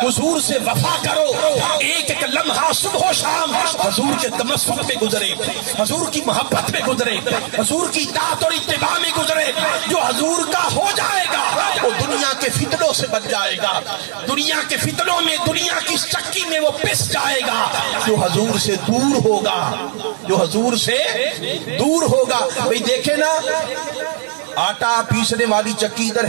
حضور سے وفا کرو، ایک ایک لمحہ صبح و شام حضور کے تمسک پہ گزرے، حضور کی محبت میں گزرے، حضور کی اطاعت اور اتباع میں گزرے۔ جو حضور کا ہو جائے گا وہ دنیا کے فتنوں سے بچ جائے گا، دنیا کے فتنوں میں، دنیا کی چکی میں وہ پس جائے گا۔ جو حضور سے دور ہوگا، جو حضور سے دور ہوگا، بھئی دیکھیں نا آٹا پیسنے والی چکی ادھر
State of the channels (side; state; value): left; silent; 67 dB below the other